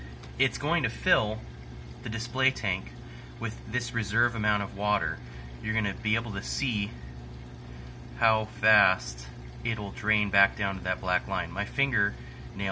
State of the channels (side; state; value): both; identical; correlation 1.00